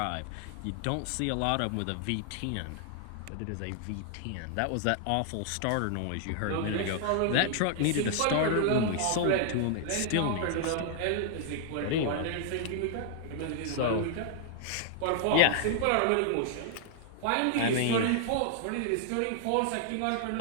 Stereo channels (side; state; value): both; different; correlation -0.01